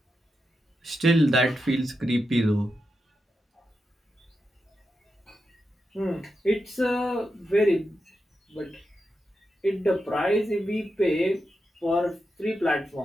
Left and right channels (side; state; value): both; normal; correlation 0.88